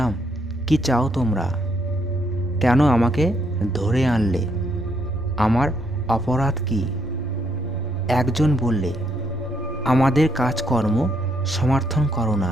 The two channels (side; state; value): both; normal; correlation 0.74